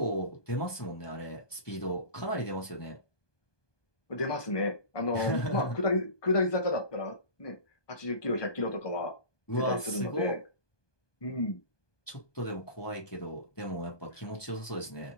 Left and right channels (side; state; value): right; late; 1.2 ms